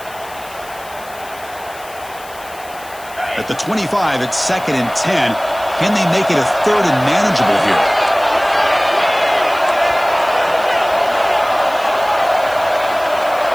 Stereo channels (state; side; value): noise; left; hiss, 19 dB below the sound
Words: At the 25, it's 2nd and 10. Can they make it a 3rd and manageable here?